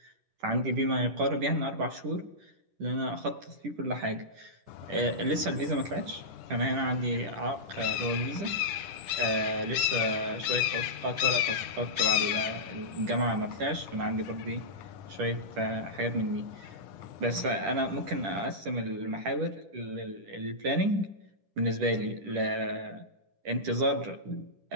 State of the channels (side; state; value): left; late; 10 ms